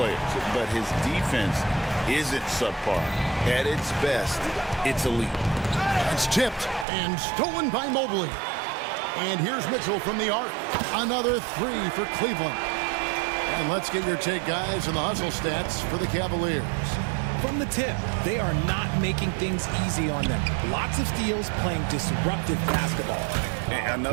But his defense isn't subpar. At its best, it's elite. It's tipped and stolen by Mobley. And here's Mitchell from the arc. Another three for Cleveland. And let's get your take, guys, on the hustle stats for the Cavaliers. From the tip, they are not making things easy on them. Lots of steals, playing disruptive basketball. And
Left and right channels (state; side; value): drops out; left; at 6.9 s